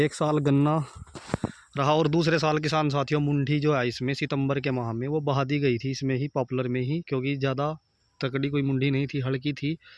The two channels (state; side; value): identical; both; correlation 1.00